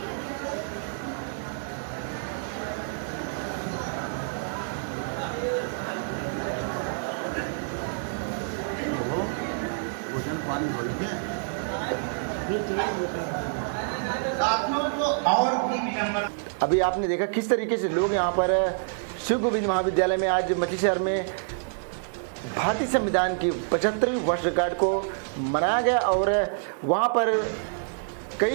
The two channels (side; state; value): left; silent; digital silence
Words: साथियों को और भी विडंबना। अभी आपने देखा किस तरीके से लोग यहाँ पर शिव गोविंद महाविद्यालय में आज मछली शहर में भारतीय संविधान की 75वीं वर्षगांठ को मनाया गया और वहाँ पर